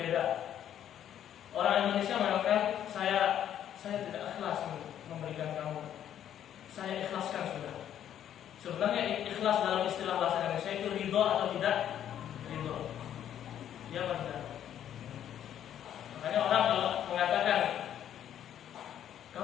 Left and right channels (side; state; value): right; quieter; 10.4 dB